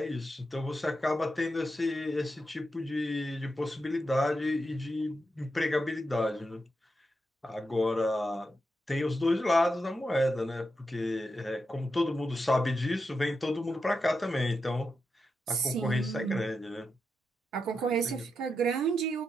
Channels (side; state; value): both; normal; correlation 0.87